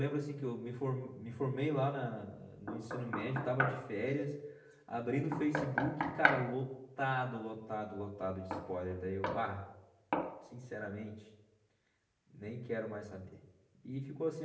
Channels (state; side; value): identical; both; correlation 1.00